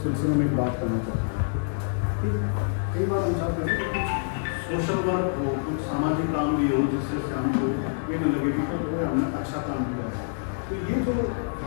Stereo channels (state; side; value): silent; right; digital silence